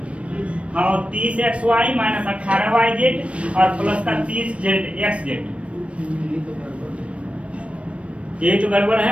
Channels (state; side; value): late; left; 0.062 ms